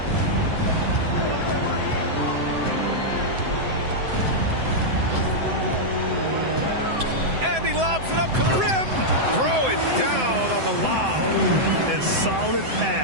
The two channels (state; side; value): late; left; 7.8 ms